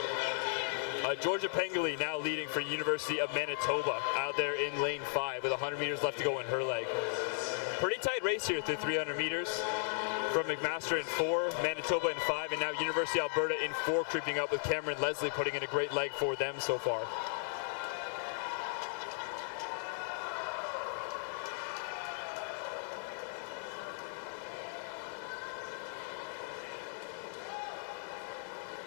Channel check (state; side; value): silent; right; digital silence